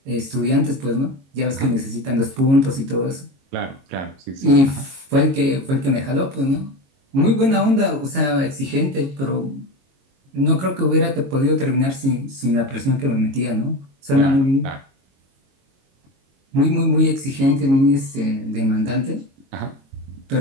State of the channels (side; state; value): left; late; 22 ms